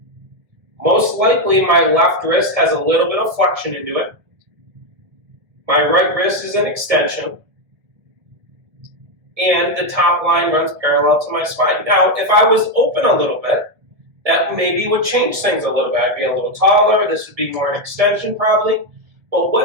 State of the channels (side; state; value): left; late; 1.7 ms